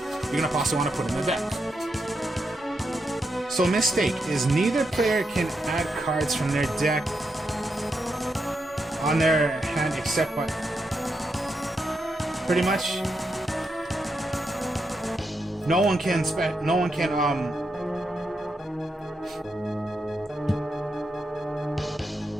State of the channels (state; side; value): normal; both; correlation 0.83